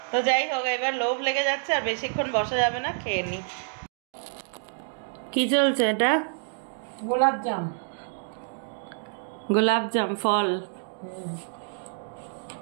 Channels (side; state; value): left; silent; digital silence